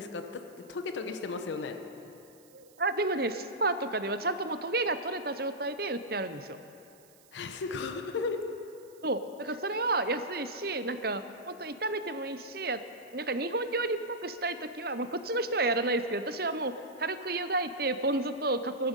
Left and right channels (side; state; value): right; noise; hiss, 27 dB below the sound